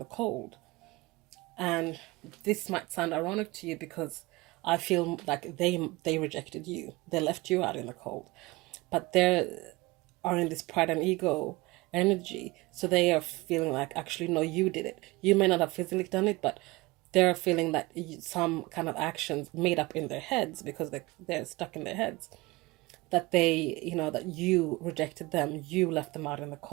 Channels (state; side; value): quieter; left; 22.0 dB